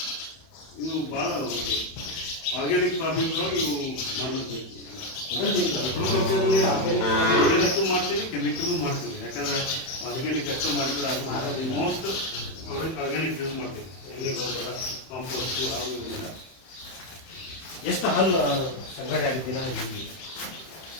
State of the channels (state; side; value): late; right; 31 ms